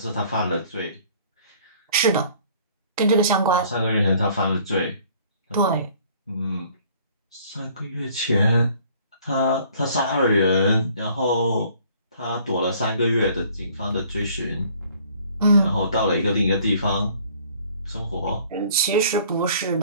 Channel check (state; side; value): inverted; both; correlation -0.56